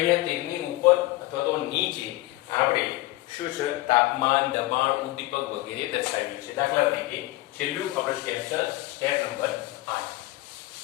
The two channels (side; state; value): right; quieter; 18.8 dB